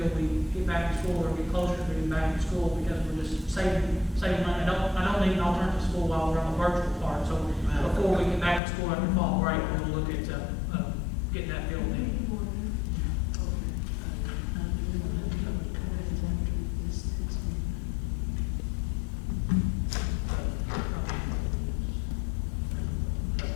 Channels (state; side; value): drops out; right; at 8.6 s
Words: we get back to school or get closer to getting back to school, because we're just saving money. I don't need an alternative school while we're on the virtual part. So before we get back to school after fall break, we'll look at getting that filled in.